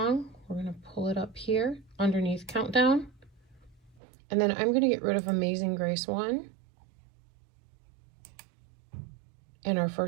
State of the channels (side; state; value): left; drops out; at 4.0 s